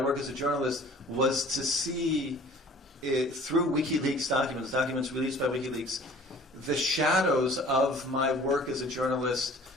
as a journalist was to see through WikiLeaks documents released by WikiLeaks, the shadows of my work as a journalist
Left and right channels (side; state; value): both; normal; correlation 0.49